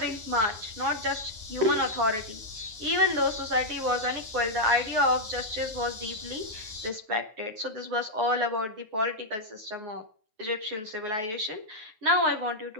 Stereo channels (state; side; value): late; left; 9.6 ms